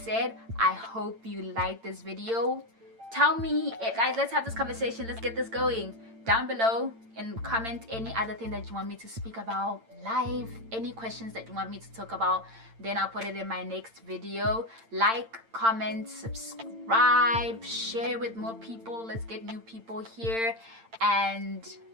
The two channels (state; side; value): late; left; 8.8 ms